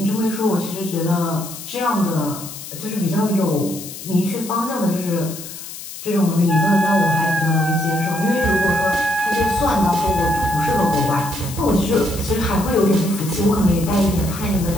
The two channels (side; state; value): left; noise; hiss, 12 dB below the sound